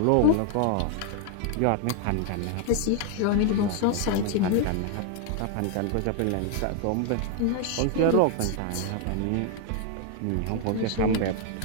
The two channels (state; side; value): different; both; correlation 0.00